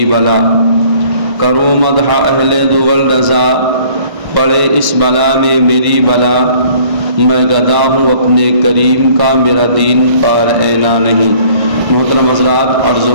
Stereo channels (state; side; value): late; left; 1.6 ms